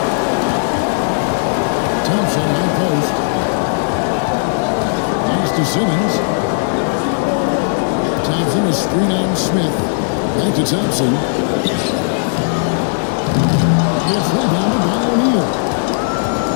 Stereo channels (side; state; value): right; silent; digital silence